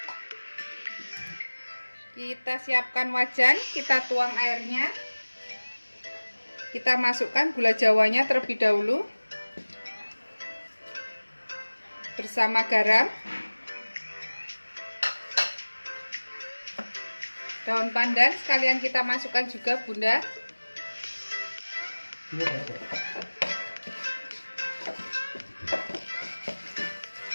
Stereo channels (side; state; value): both; inverted; correlation -1.00